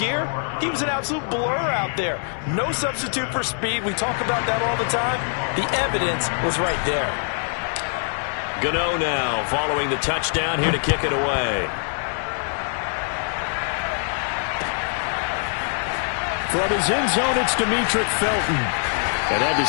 he was an absolute blur out there. No substitute for speed. We talk about that all the time. The evidence was right there. Gano now following the touchdown here to kick it away. From his end zone, it's Demetric Felton. And that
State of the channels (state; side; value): silent; right; 57 dB below the other